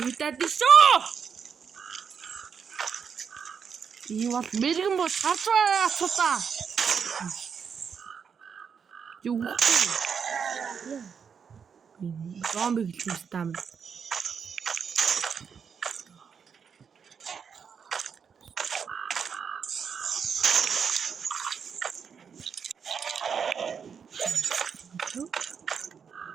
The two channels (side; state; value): left; quieter; 6.7 dB